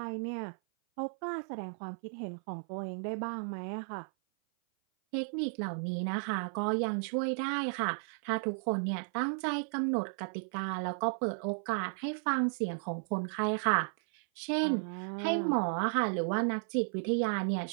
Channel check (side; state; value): left; silent; 55 dB below the other